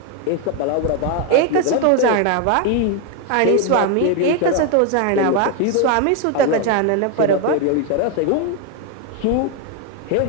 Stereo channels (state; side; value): different; both; correlation 0.01